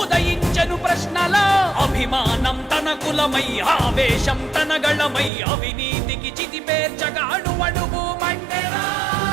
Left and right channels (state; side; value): drops out; left; at 5.3 s